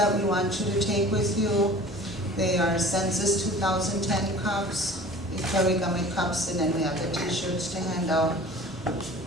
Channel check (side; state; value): both; normal; correlation 0.43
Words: we want you to take with you. They are Census 2010 cups, Equay Wiigamig cups, and then we have the t-shirts to hand out.